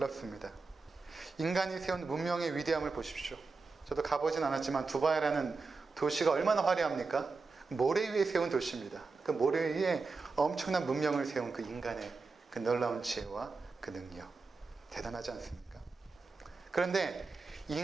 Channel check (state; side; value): quieter; left; 4.2 dB